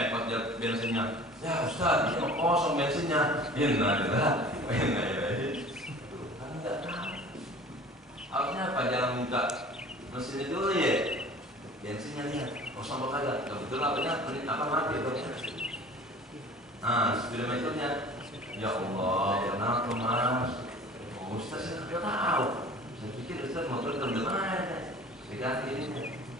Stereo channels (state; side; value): normal; both; correlation 0.44